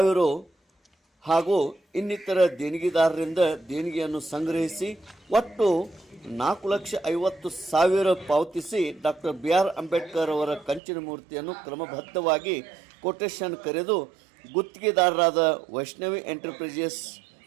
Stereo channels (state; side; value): drops out; left; at 10.8 s